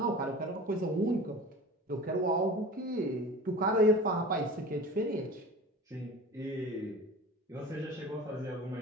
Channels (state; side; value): normal; both; correlation 0.37